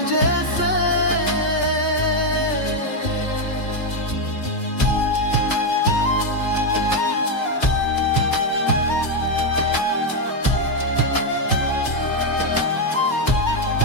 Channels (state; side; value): late; right; 2.2 ms